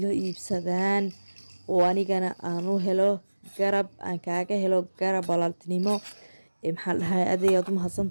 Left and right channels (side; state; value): both; inverted; correlation -1.00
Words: iibsadaan oo anigana aan u helo garab aan kaaga helo garab walaaltinimo maxaa dhahay adeeyaad u